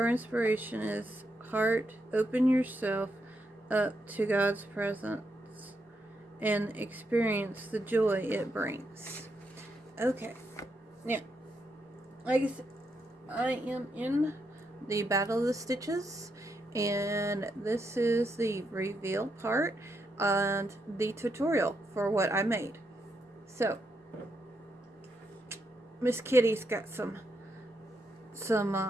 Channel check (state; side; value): normal; both; correlation 0.81